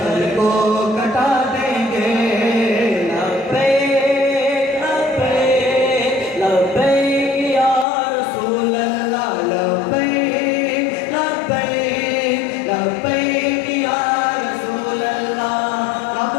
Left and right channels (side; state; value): right; drops out; at 7.9 s